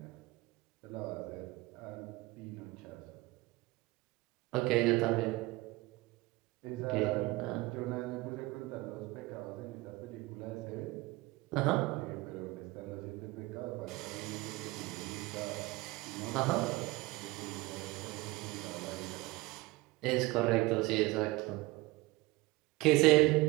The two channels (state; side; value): quieter; left; 20.6 dB